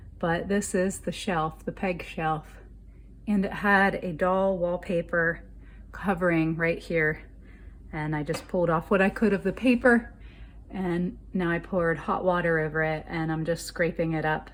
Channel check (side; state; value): both; identical; correlation 1.00